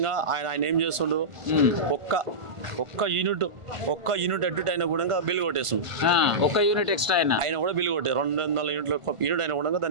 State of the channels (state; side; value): late; left; 1.5 ms